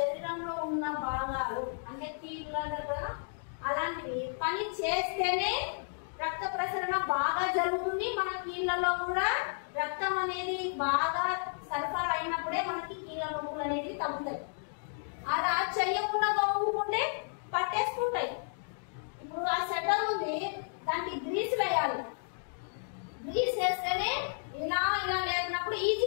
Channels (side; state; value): right; silent; digital silence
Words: ఉన్న భాగాలు అంటే కీళ్ళంటే కూడా అలాంటివి పని చేస్తేనే రక్త ప్రసరణ బాగా జరుగుతుంది. మన కీళ్ళలో కూడా రక్తం అనేది బాగా సరఫరా అయినప్పుడే మనకి కీళ్ళ నొప్పులు అనేది తగ్గుతాయి. అలా చెయ్యకుండా ఊపుకుంటే పట్టేసుకుంటాయి. ఇప్పుడు ఆ సెటర్ ఉంది, దానికి గ్రీస్ వేయాలి. గ్రీస్ వేస్తేనే ఇలా ఇలా లేకున్నప్పుడు